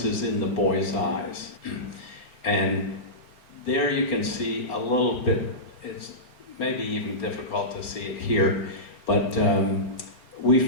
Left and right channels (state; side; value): late; right; 4.3 ms